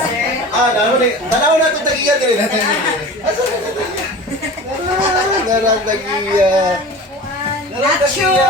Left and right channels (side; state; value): both; normal; correlation 0.37